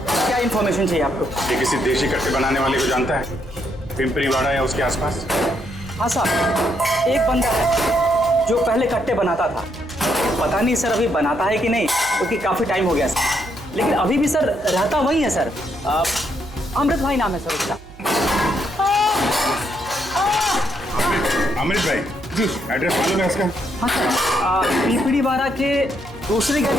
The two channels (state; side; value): noise; right; hum, 21 dB below the sound